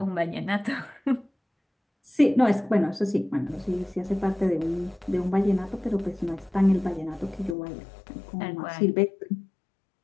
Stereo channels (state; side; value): drops out; right; at 7.6 s